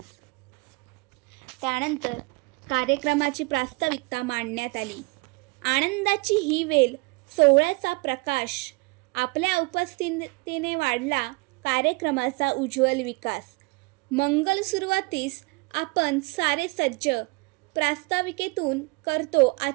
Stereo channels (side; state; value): left; quieter; 27.4 dB